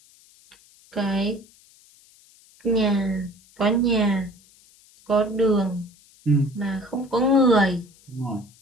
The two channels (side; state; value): left; noise; hiss, 28 dB below the sound